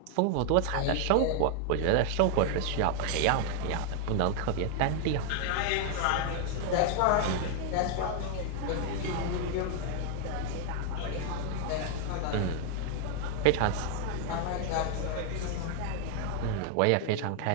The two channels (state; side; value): different; both; correlation 0.00